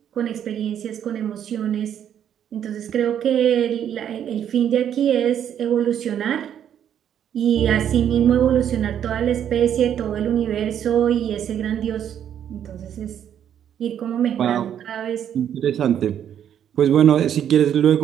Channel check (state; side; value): quieter; left; 9.5 dB